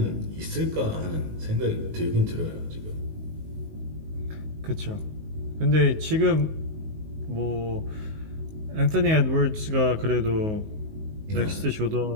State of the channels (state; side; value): late; left; 19 ms